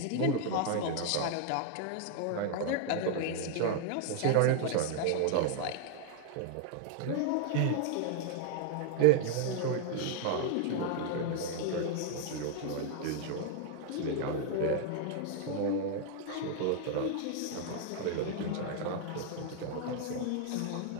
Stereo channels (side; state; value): both; different; correlation 0.00